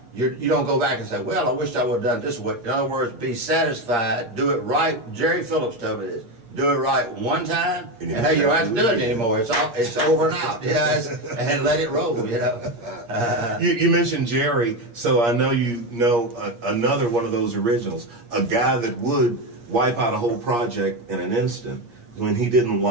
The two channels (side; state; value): left; late; 8.5 ms